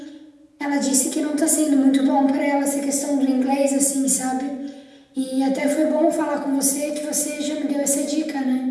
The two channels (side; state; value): both; identical; correlation 1.00